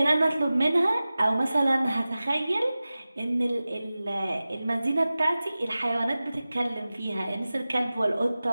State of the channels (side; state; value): both; inverted; correlation -0.96